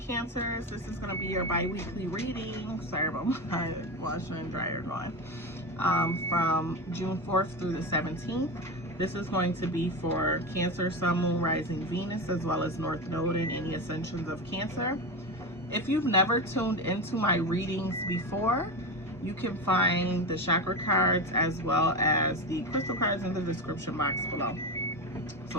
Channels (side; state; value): both; normal; correlation 0.19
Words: This is going to be your bi-weekly reading. Sorry about my washer and dryer going. From June 4th through the 17th. This is going to be for Cancer, Sun, Moon, Rising, Venus, as well as North Node and any ascensions of Cancer. If you've never tuned into my readings before, you can find the chakra cards as well as the crystal cards in the description box below.